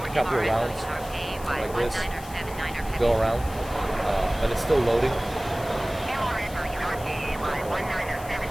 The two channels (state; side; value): noise; left; hiss, 17 dB below the sound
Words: a couple of rounds like this. Go around. But it's still loading.